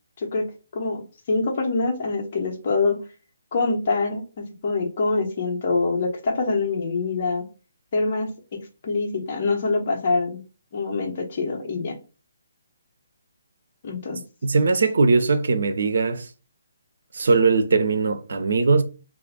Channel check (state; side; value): inverted; both; correlation -0.78